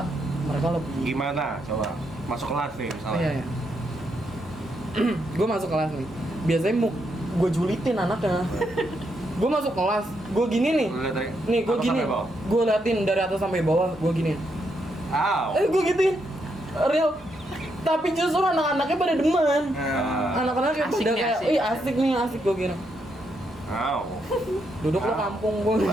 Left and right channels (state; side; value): normal; both; correlation 0.79